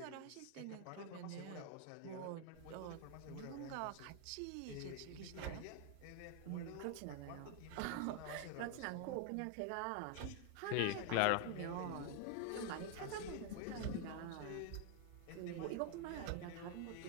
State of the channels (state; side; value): different; both; correlation 0.00